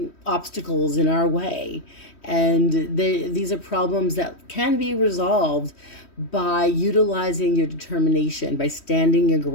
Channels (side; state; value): right; late; 3.1 ms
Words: obstacles in our way. And these are problems that can be resolved by utilizing your determination, by standing your